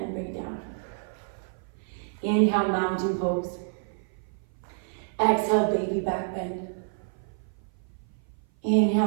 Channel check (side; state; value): left; silent; 56 dB below the other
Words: bring it down. Inhale, mountain pose. Exhale, baby back bend.